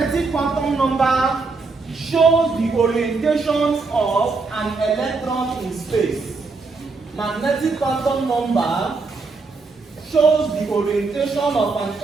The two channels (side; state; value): left; quieter; 4.1 dB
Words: shows the orientation of an electron in space. Magnetic quantum number shows the orientation of an